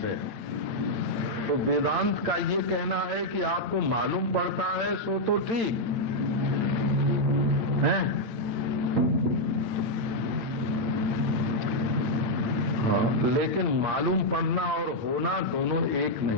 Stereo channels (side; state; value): left; late; 9.1 ms